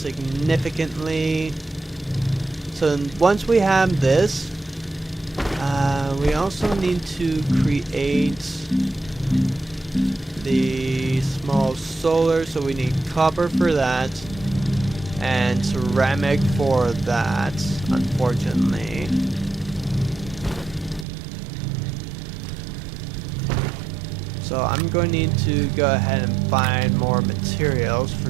So once we have this, we also need to create the small solar, so we need copper for that and ceramic for that, unfortunately. So I'm going to need to go ahead and find more materials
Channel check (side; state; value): left; drops out; at 21.1 s